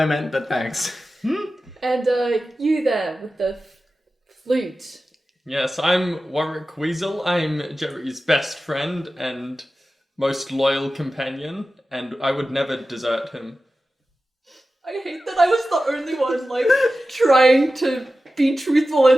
meant, but thanks. And, you there with the flute. Yes, I'm Warwick Weasel. I'm Jerry's best friend and most loyal companion, and I would never desert him. I hate that I was the only one, trying to be truthful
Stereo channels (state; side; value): normal; both; correlation 0.94